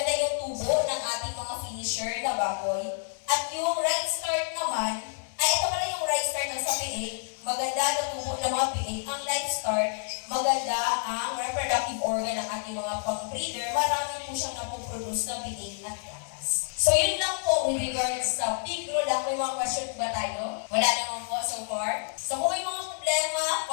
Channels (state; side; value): silent; right; 59 dB below the other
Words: yung tubo ng ating mga finisher na baboy. At yung right start naman, ay ito pala yung right start ng sa PA. Maganda na tubo ng mga PA. Ang right start, maganda ang reproductive organ ng ating mga pang-breeder. Marami po siyang napoproduce na PA at gatas. So yun lang po with regards sa pigro lang. May mga question ba tayo? Wala naman po so far. So kung may mga problema,